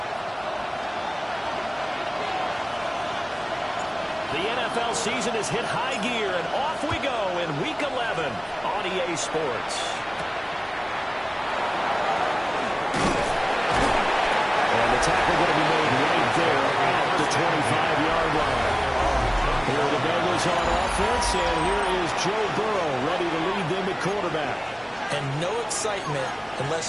The NFL season has hit high gear, and off we go in Week 11 on EA Sports. And the tackle going to be made right there at the 25-yard line. Here are the Bengals on offense, and here is Joe Burrow ready to lead them at quarterback. And no excitement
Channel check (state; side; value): identical; both; correlation 1.00